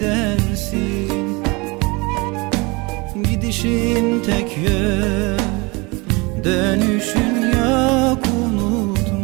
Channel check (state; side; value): quieter; left; 26.4 dB